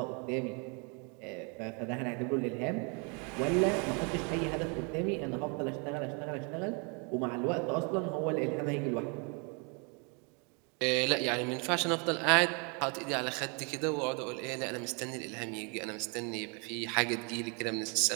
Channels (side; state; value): left; quieter; 34.7 dB